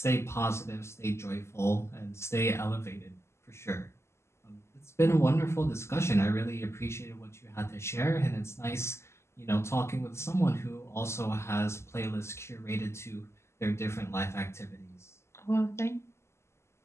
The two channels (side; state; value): right; late; 0.13 ms